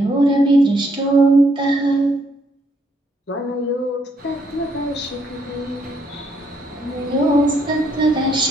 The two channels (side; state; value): both; normal; correlation 0.72